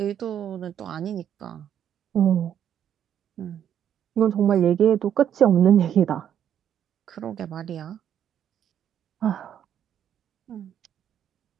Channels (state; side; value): quieter; left; 9.6 dB